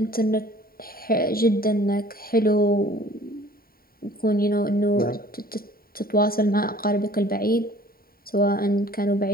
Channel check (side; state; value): right; late; 0.43 ms